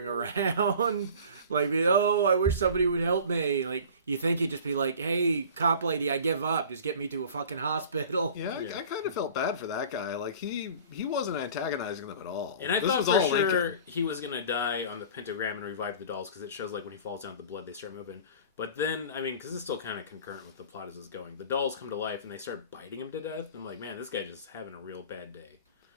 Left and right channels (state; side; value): inverted; both; correlation -0.42